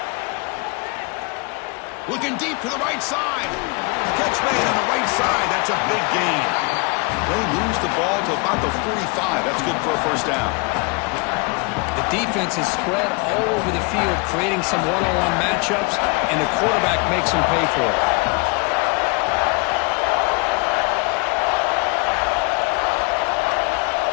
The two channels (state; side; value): quieter; right; 29.9 dB